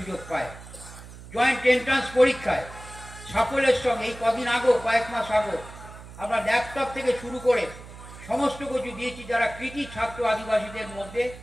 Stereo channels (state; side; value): noise; right; hum, 16 dB below the sound